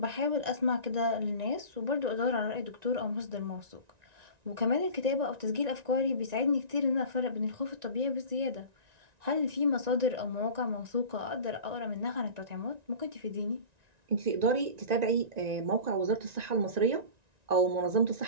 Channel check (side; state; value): left; late; 1.9 ms